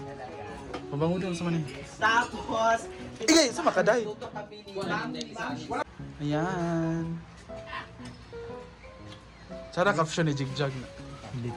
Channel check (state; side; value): identical; both; correlation 1.00